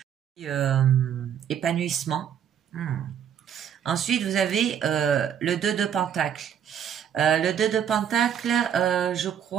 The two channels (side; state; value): left; quieter; 8.8 dB